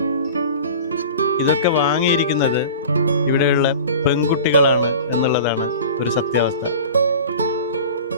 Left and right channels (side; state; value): both; inverted; correlation -0.38